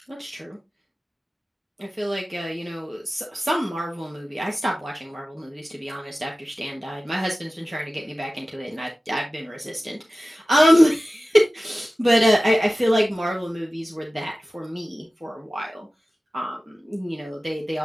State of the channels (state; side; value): normal; both; correlation 0.96